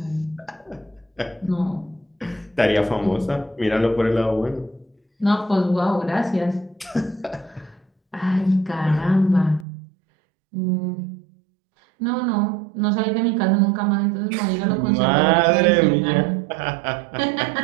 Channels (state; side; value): drops out; left; at 9.7 s